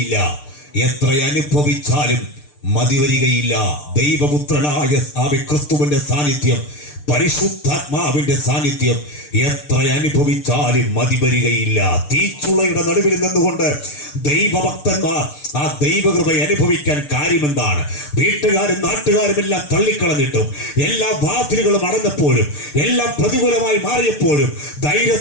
എത്ര അനുഭവിച്ചാലും മതിവരികയില്ല. ദൈവപുത്രനായ ക്രിസ്തുവിന്റെ സാന്നിധ്യം, പരിശുദ്ധാത്മാവിന്റെ സാന്നിധ്യം എത്ര അനുഭവിച്ചാലും മതിവരികയില്ല. തീച്ചുളയുടെ നടുവിൽ നിന്നുകൊണ്ട് ദൈവഭക്തന്മാർ ആ ദൈവകൃപ അനുഭവിക്കാൻ കാര്യമെന്താണ്? വീട്ടുകാരും നാട്ടുകാരും എല്ലാം തള്ളിക്കളഞ്ഞിട്ടും, എല്ലാ വാതിലുകളും അടഞ്ഞപ്പോഴും, എല്ലാം പ്രതികൂലമായി മാറിയപ്പോഴും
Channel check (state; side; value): late; right; 6.7 ms